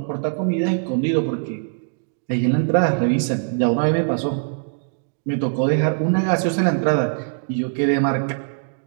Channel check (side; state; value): left; silent; digital silence